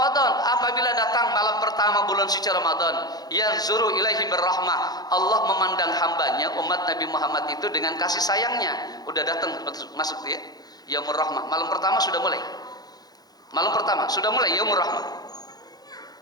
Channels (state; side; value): late; right; 0.19 ms